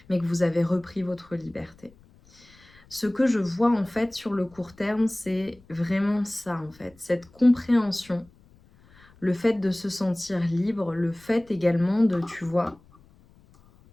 mais que vous avez repris votre liberté. Ce que je vois en fait sur le court terme, c'est vraiment ça en fait, cette compréhension, le fait de se sentir libre, le fait également de, tu vois,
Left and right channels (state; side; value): noise; left; rumble, 28 dB below the sound